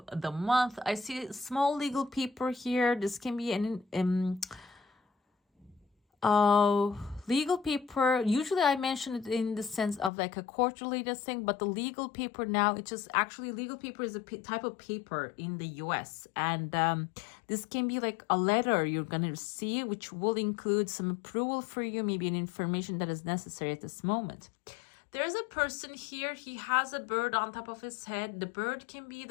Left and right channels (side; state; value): right; drops out; at 10.1 s